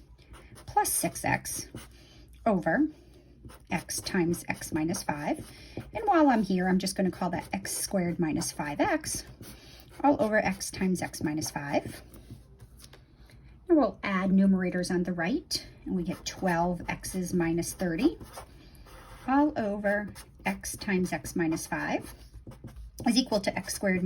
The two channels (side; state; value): both; identical; correlation 1.00